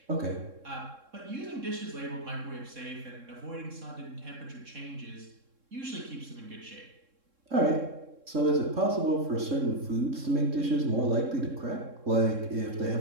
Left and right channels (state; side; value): late; left; 3.7 ms